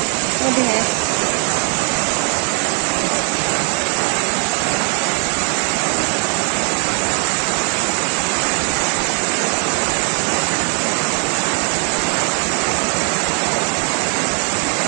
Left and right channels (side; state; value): left; quieter; 39.6 dB